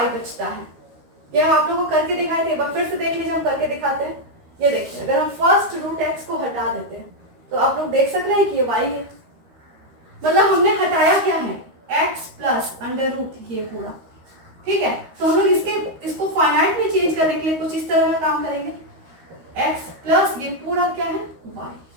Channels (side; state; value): left; late; 13 ms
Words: बचता है। ये हम आप लोगों को करके दिखाए थे, एक बार फिर से देख लीजिए, हम करके दिखाते हैं। ये देखिए अगर हम फर्स्ट रूट x को हटा देते हैं तो आप लोग देख सक रहे हैं कि ये y है। मतलब हमने हटाया क्या है, x प्लस अंडर रूट ये पूरा, ठीक है। तो हम लोग इसको फाइनाइट में चेंज करने के लिए कुछ इस तरह का काम करेंगे, x प्लस ये पूरा क्या है y।